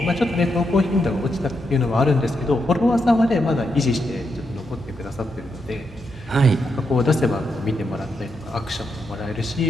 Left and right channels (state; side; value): normal; both; correlation 0.82